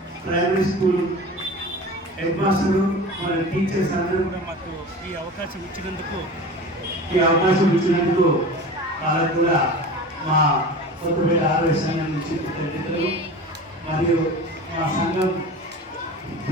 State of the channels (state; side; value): normal; both; correlation 0.35